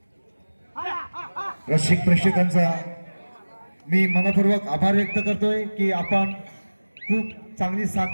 रसिक प्रेक्षकांचा मी मनपूर्वक आभार व्यक्त करतोय की आपण खूप चांगली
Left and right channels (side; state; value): both; inverted; correlation -1.00